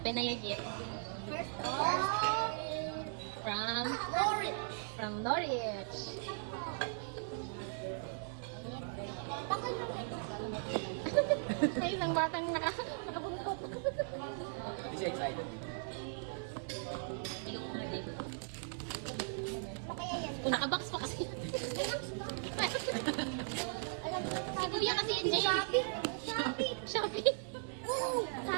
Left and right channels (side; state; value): left; silent; 52 dB below the other